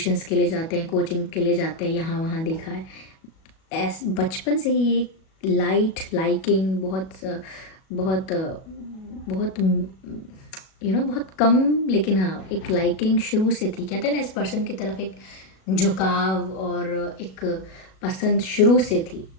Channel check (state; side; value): late; right; 37 ms